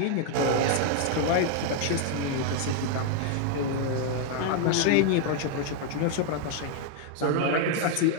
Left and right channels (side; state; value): both; different; correlation 0.00